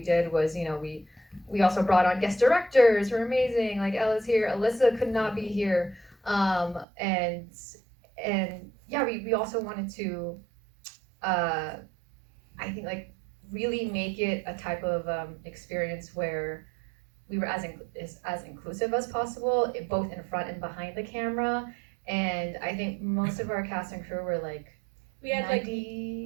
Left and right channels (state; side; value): drops out; left; at 6.9 s